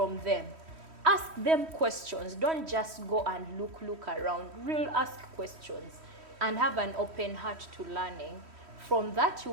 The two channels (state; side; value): late; left; 3.1 ms